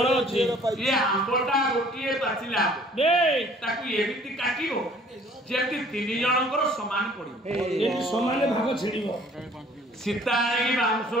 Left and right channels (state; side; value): normal; both; correlation 0.55